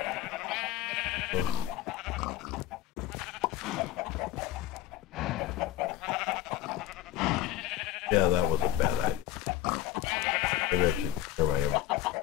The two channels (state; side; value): quieter; right; 14.8 dB